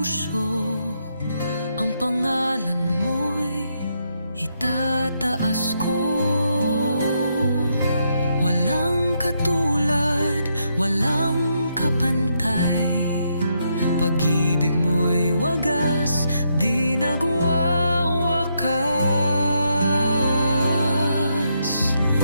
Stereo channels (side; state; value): both; inverted; correlation -0.78